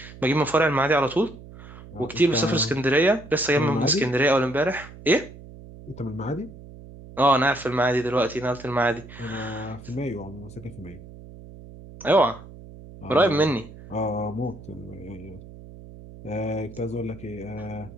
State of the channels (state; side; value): noise; right; hum, 17 dB below the sound